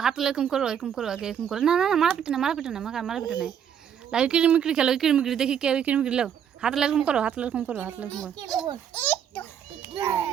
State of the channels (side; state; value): left; quieter; 8.7 dB